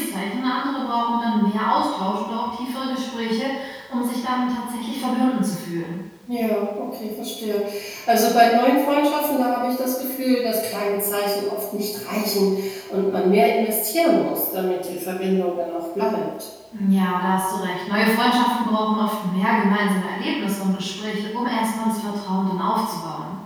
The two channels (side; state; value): both; identical; correlation 1.00